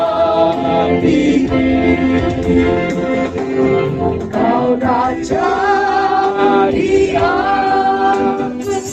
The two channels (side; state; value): both; identical; correlation 1.00